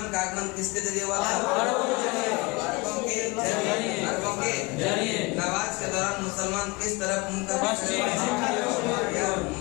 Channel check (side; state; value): right; quieter; 25.6 dB